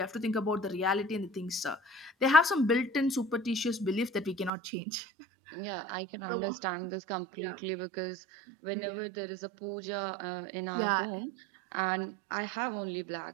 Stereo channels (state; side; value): drops out; left; at 4.5 s